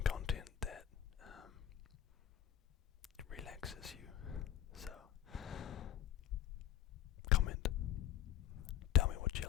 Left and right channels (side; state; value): right; quieter; 10.9 dB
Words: content that relaxes you. So comment, tell me what you